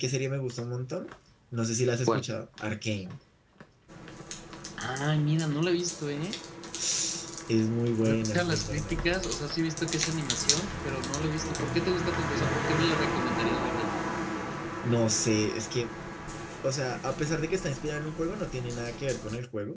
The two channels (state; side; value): identical; both; correlation 1.00